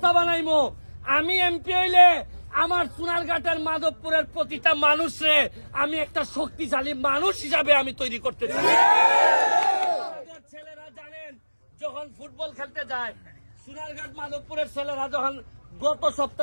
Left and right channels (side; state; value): both; inverted; correlation -1.00